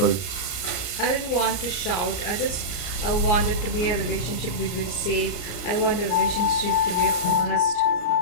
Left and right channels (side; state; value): right; late; 34 ms